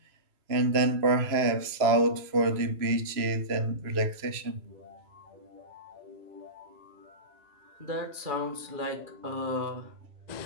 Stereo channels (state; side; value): late; left; 3.0 ms